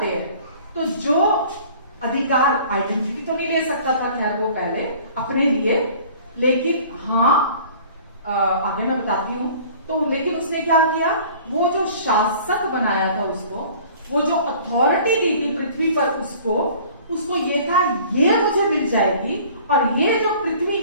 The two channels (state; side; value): inverted; both; correlation -0.49